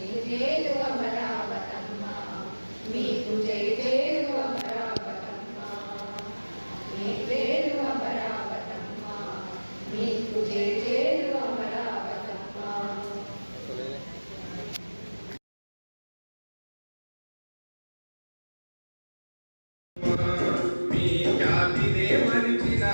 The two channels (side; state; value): both; inverted; correlation -1.00